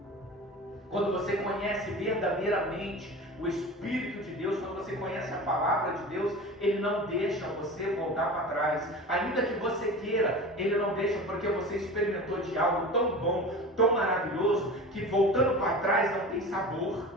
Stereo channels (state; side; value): normal; both; correlation 0.34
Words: Quando você conhece verdadeiramente o Espírito de Deus, quando você conhece a palavra de Deus, ele não deixa você voltar para trás. Ainda que você queira, ele não deixa, porque você experimentou de algo tão bom, tão maravilhoso, que voltando para trás não tem sabor,